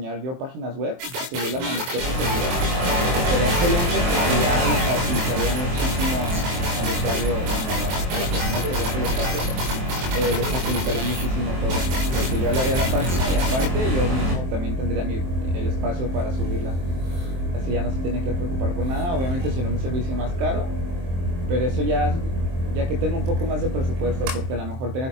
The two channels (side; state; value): left; late; 23 ms